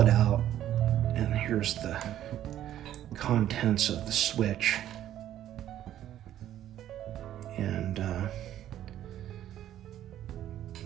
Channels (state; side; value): quieter; left; 11.9 dB